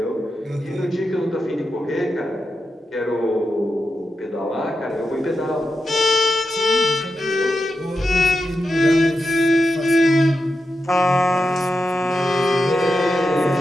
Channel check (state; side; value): normal; both; correlation 0.88